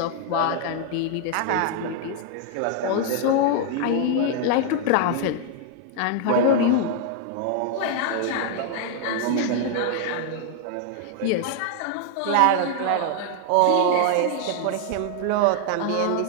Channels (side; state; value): both; different; correlation 0.00